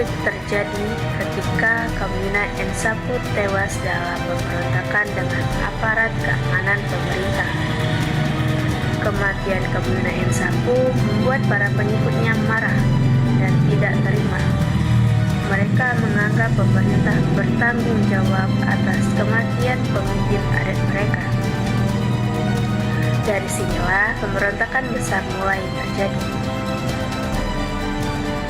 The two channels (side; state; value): both; identical; correlation 1.00